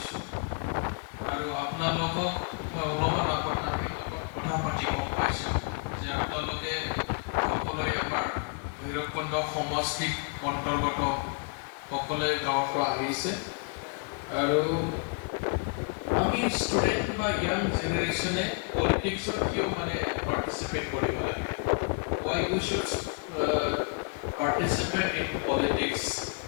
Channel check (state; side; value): quieter; right; 36.9 dB